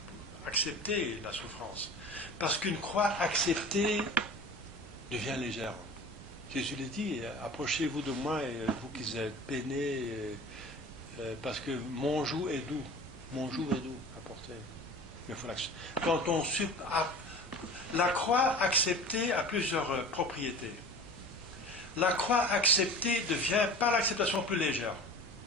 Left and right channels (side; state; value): both; normal; correlation 0.38